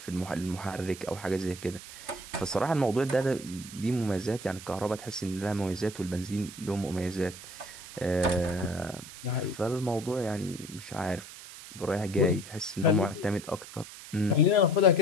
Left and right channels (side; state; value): right; noise; hiss, 14 dB below the sound